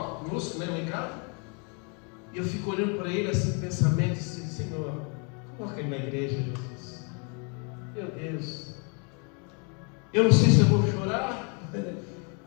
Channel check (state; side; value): quieter; right; 36.1 dB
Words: né, lá em casa. E eu fico olhando para ele assim, pensamento, assim: Senhor, coloca ele na igreja, Jesus. Meu Deus, eu não sei se eu vou chorar